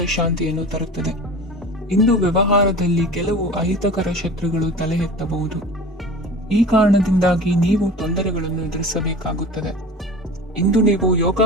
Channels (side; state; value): both; normal; correlation 0.38